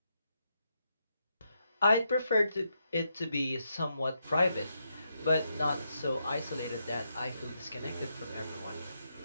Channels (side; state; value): both; inverted; correlation -0.82